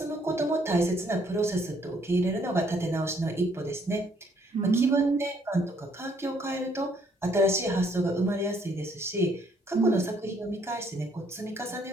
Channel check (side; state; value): both; normal; correlation 0.66